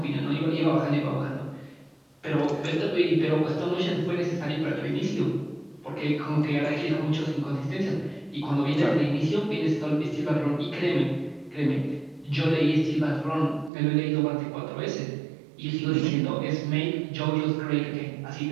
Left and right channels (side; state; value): left; drops out; at 13.7 s